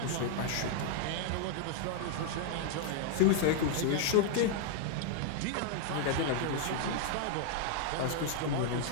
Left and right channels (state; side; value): different; both; correlation 0.00